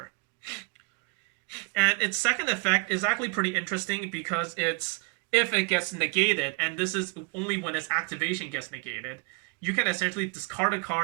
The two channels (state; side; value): quieter; left; 32.4 dB